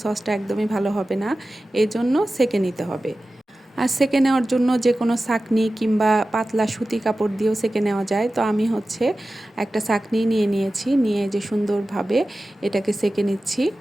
সসটা একদমই ভালো হবে না। এই জন্য ছেঁকে নিতে হবে। আর ছেঁকে নেওয়ার জন্য যে কোনো ছাঁকনি কিংবা পাতলা সুতি কাপড় দিয়েও ছেঁকে নেওয়া যায়। তো আমি হচ্ছে একটা ছাঁকনি নিয়ে নিয়েছি, নিয়ে যে সুন্দরভাবে এটাকে ছেঁকে নিচ্ছি।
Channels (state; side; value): normal; both; correlation 0.95